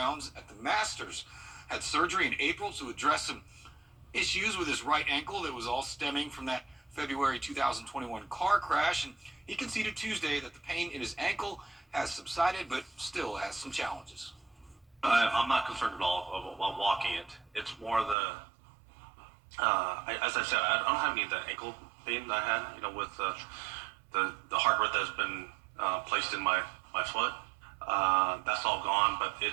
at the Masters. Had surgery in April to address some issues with his right ankle that was all stemming from that February 2021 car crash, and he conceded Tuesday that the pain in his ankle has subsided but still has some challenges. I'm not concerned at all about walking it. It's more as I said, I don't have any of the ankle pain that I had, with the hardware that's been placed in my foot. That's all gone, but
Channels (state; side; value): drops out; left; at 18.2 s